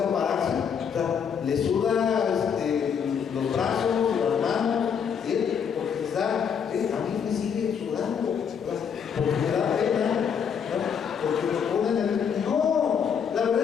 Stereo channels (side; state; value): right; quieter; 7.3 dB